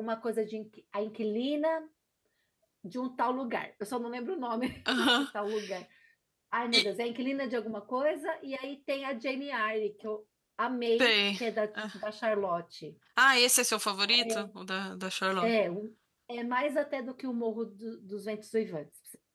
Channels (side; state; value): both; identical; correlation 1.00